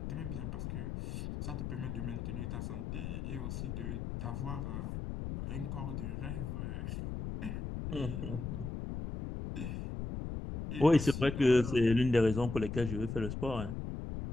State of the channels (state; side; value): noise; left; rumble, 5 dB below the sound